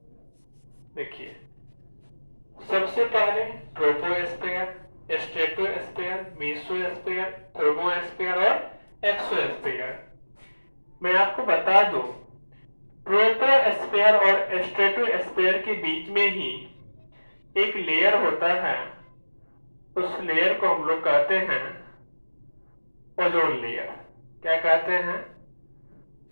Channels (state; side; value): inverted; both; correlation -1.00